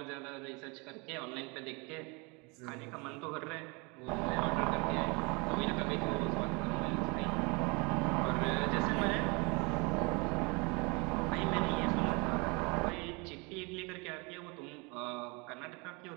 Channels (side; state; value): left; quieter; 29.3 dB